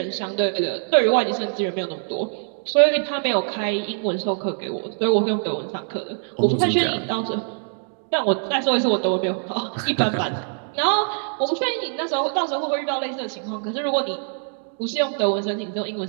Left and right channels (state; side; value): silent; left; 63 dB below the other